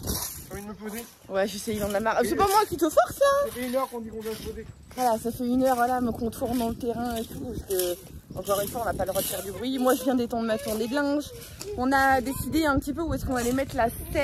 T'as envie de me poser? Ouais, je sais, il en a marre. C'est pas moi qui te force, là. Ça fait 1 heure qu'on dit qu'on doit se poser. Voilà, ça fait 1 heure, voilà, me contourne dans le terrain et tout. Parce que, encore une fois, on n'a pas le droit de faire du bruit. Moi, je viens d'étendre ma tournée de linge. On a décidé un petit peu où est-ce qu'on allait mettre la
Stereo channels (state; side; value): identical; both; correlation 1.00